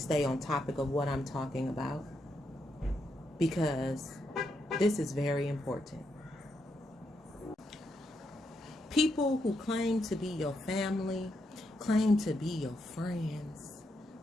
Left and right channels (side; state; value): both; normal; correlation 0.81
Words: on topic of what I'm talking about, because this is very important. People who claim to be your family, claim to be your friends,